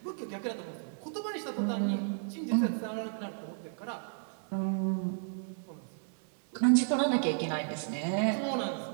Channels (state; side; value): silent; left; digital silence